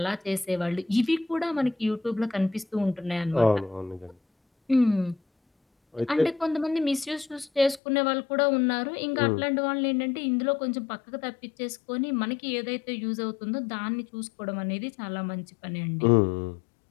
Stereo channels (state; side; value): drops out; right; at 7.8 s